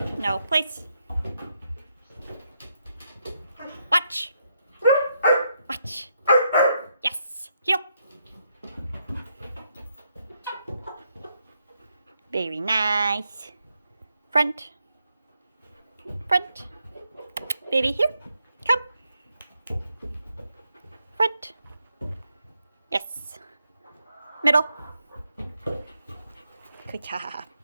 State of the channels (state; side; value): inverted; both; correlation -0.80